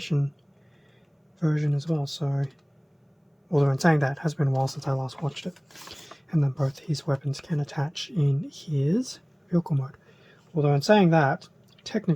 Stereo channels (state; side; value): identical; both; correlation 1.00